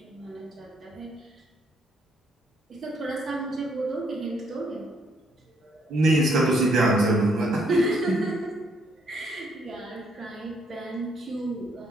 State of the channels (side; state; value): both; normal; correlation 0.70